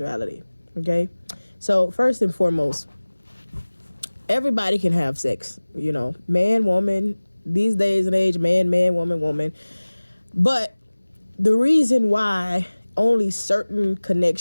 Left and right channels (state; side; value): inverted; both; correlation -1.00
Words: Okay, so first and foremost, everybody can have sex. Man, woman. These days and age, man, woman, woman. But the reason why only certain